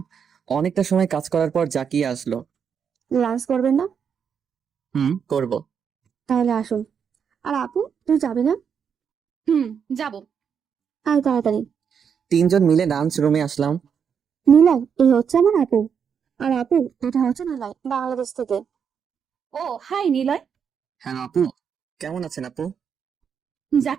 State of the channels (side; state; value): left; quieter; 7.1 dB